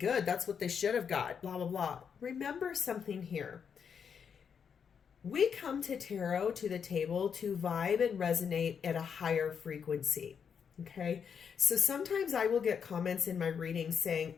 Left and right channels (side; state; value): right; quieter; 7.0 dB